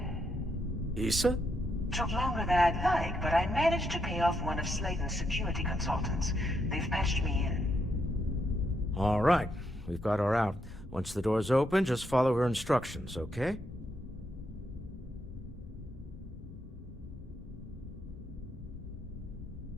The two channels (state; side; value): normal; both; correlation 0.79